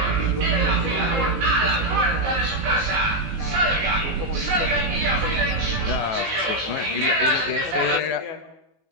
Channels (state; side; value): late; left; 19 ms